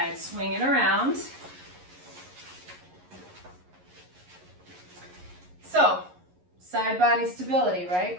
Swing it around. So, side body stability,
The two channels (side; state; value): left; late; 11 ms